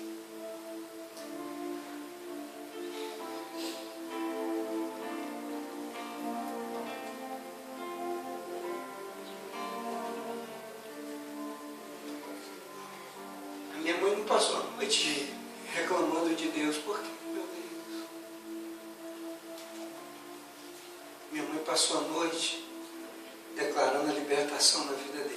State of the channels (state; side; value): identical; both; correlation 1.00